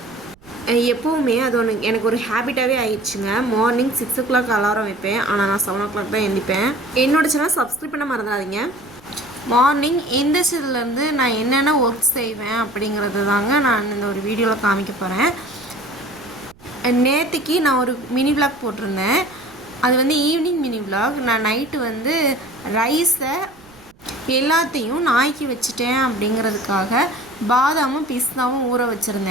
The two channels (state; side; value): noise; right; rumble, 27 dB below the sound